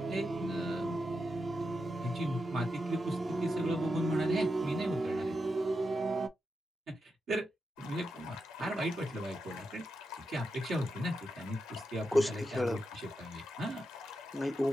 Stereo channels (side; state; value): both; normal; correlation 0.87